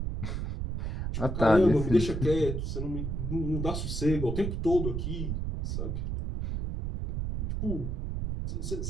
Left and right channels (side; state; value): right; noise; rumble, 2 dB below the sound